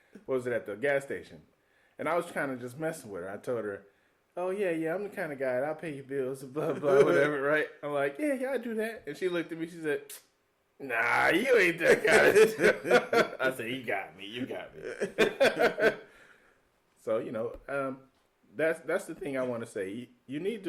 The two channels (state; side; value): identical; both; correlation 1.00